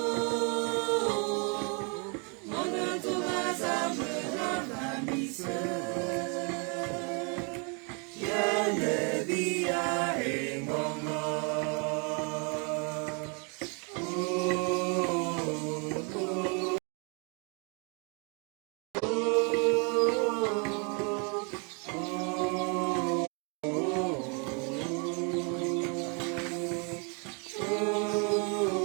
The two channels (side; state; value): left; quieter; 35.6 dB